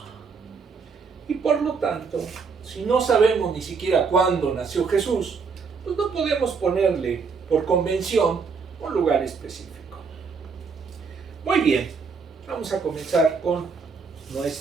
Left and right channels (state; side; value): quieter; left; 5.2 dB